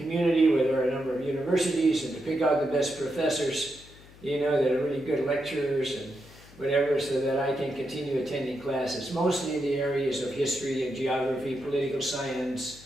where there are a number of universities, and to pick out the best professors, that are really good lecturers and whatever, so that I can continue attending classes, mostly in the areas of history and geography, political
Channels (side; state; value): left; noise; hum, 22 dB below the sound